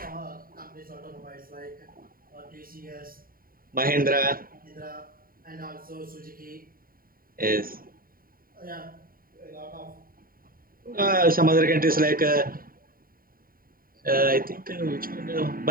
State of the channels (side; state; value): left; late; 0.42 ms